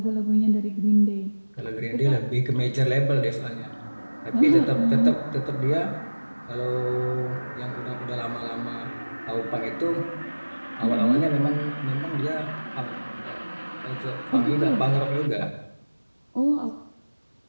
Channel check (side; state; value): both; inverted; correlation -1.00